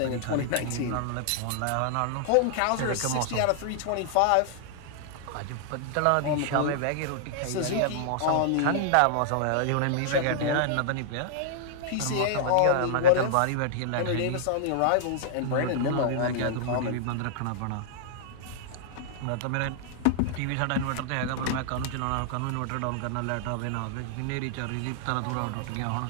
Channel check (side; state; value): both; different; correlation -0.01